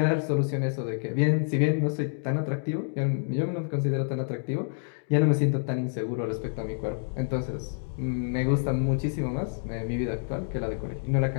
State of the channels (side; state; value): right; silent; digital silence